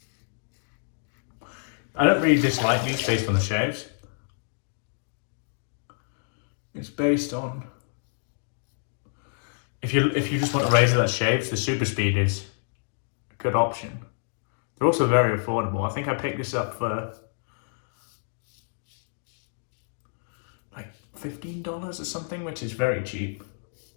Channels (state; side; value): silent; right; digital silence